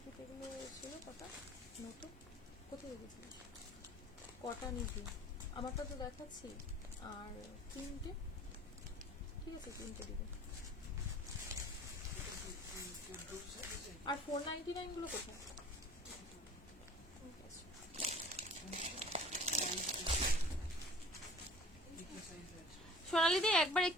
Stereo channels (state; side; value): normal; both; correlation 0.47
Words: ফিতেগুলো ছিল কটা নতুন, কোথায় রেখেছিলিস? কটা নিবি? আমারটা তো দেখাচ্ছি। আর তিনটে, ঠিক আছে তিনটে দিবে। আর 499 গুলো কোথায়? ঠিক আছে। সোনালিদি একবার